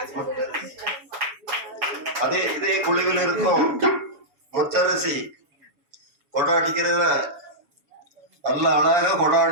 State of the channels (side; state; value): left; late; 7.1 ms